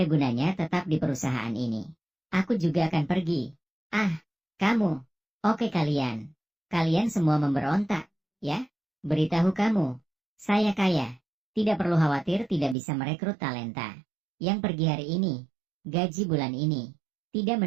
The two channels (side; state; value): left; drops out; at 12.8 s